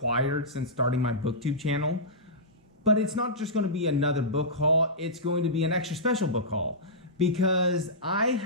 since starting my BookTube channel. But it's not just going to be another book haul, it's going to be an extra special book haul. Because I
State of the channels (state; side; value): normal; both; correlation -0.15